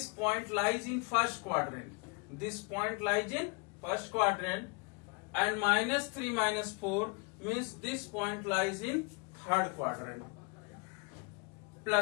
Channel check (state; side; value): quieter; right; 32.6 dB